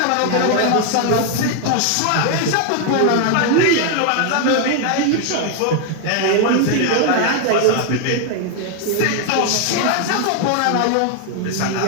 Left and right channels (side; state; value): both; different; correlation 0.00